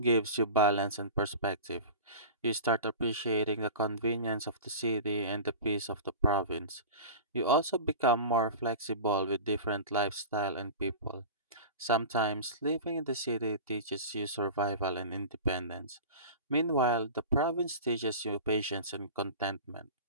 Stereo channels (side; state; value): both; inverted; correlation -0.33